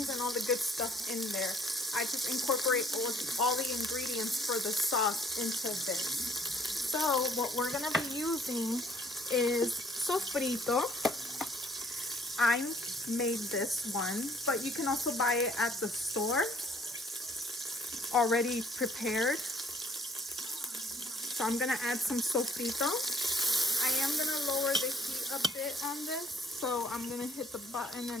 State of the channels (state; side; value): normal; both; correlation 0.60